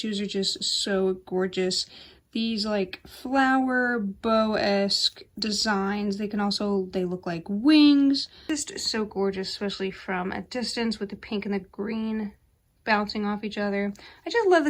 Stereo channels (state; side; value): identical; both; correlation 1.00